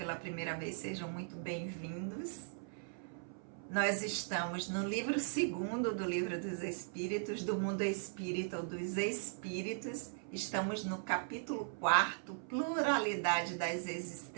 primeira vez, sejam muito bem-vindos. Nós estamos no livro 2º do Livro dos Espíritos, do Mundo Espírita ou dos Espíritos. Estamos no capítulo 4º, Pluralidade das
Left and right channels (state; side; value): silent; left; 52 dB below the other